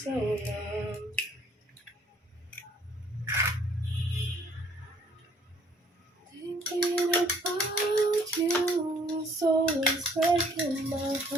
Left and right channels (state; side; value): normal; both; correlation 0.61